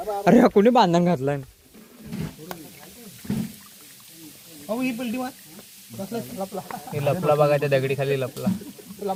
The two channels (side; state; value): both; identical; correlation 1.00